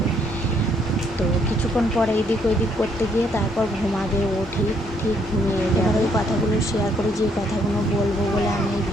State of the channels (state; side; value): normal; both; correlation 0.69